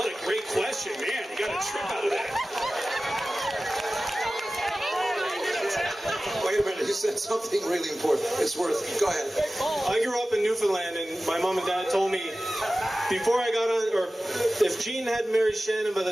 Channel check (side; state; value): both; normal; correlation 0.96